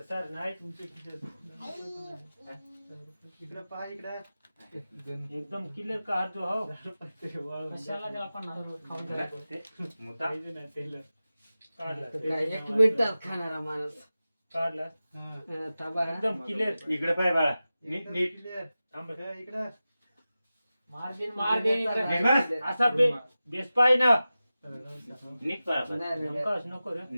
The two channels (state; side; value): inverted; both; correlation -0.95